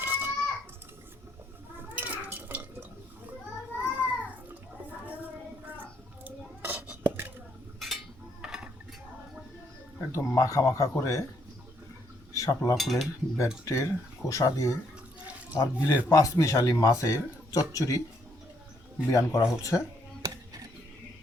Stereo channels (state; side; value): normal; both; correlation 0.72